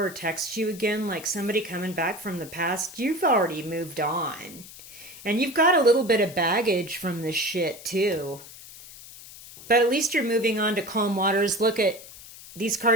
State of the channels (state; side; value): noise; left; hiss, 17 dB below the sound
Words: or text you again, like somebody coming back from the past, you've already moved on. And you've got a little bit of baggage from this shit too. But at least you're moving on to calm waters. Look at, these